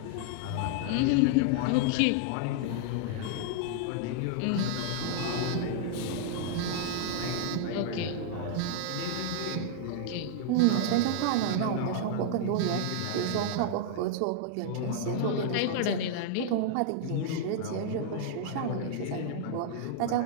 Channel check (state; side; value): different; both; correlation -0.01